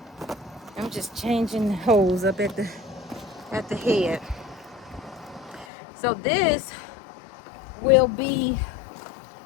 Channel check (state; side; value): drops out; right; at 5.7 s